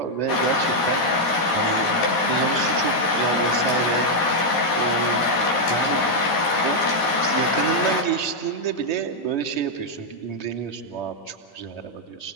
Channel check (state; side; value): late; right; 13 ms